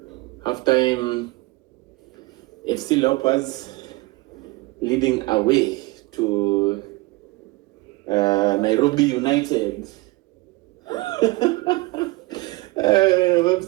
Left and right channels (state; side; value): quieter; left; 22.1 dB